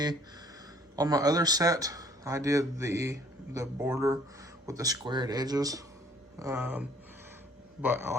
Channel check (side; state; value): both; normal; correlation 0.58